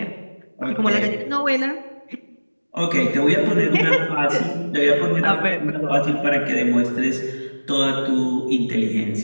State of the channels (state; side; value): inverted; both; correlation -1.00